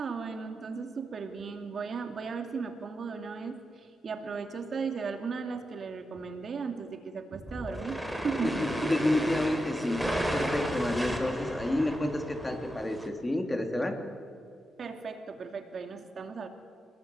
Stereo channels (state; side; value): normal; both; correlation 0.88